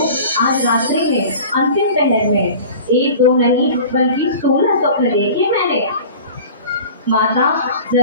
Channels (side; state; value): both; inverted; correlation -0.40